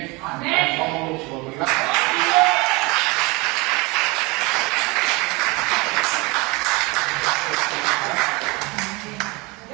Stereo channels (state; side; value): quieter; left; 25.5 dB